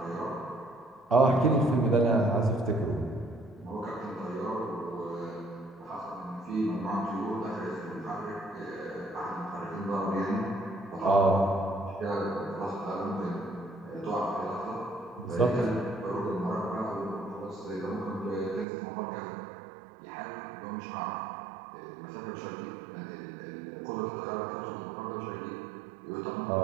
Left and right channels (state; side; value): drops out; left; at 18.7 s